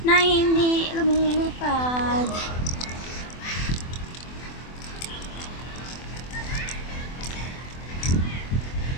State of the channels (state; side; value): late; right; 24 ms